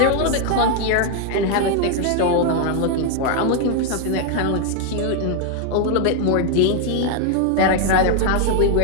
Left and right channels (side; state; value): both; different; correlation 0.00